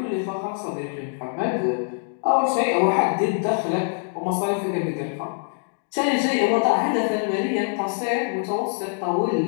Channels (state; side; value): silent; right; 63 dB below the other